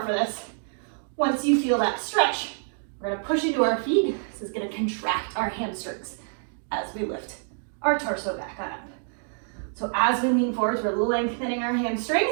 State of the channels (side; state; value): left; silent; 60 dB below the other